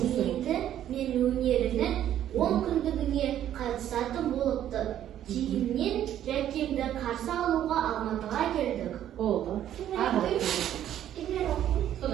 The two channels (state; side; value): quieter; left; 11.2 dB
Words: мен өнерінің 10 күндігіне қатысатын болыпты. Кейіннен Жәкемді қарсы алуға Алматыға келдік. Болды.